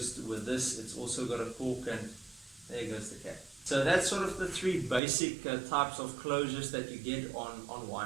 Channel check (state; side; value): drops out; left; at 5.0 s